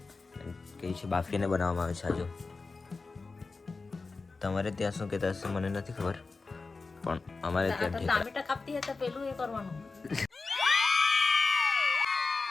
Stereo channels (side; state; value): right; quieter; 4.0 dB